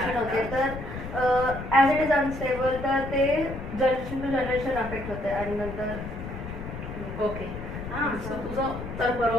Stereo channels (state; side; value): noise; left; rumble, 9 dB below the sound